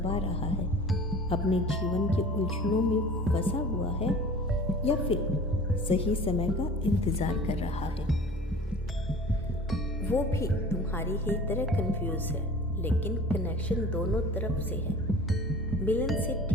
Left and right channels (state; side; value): normal; both; correlation 0.42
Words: रहा है, अपने जीवन के उलझनों में फंसा हुआ है, या फिर सही समय का इंतज़ार कर रहा है। वो भी तुम्हारी ही तरह कंफ्यूज है, लेकिन कनेक्शन दोनों तरफ से है। मिलन से